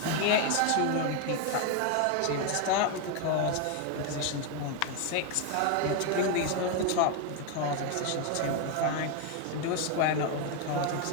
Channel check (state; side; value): different; both; correlation 0.01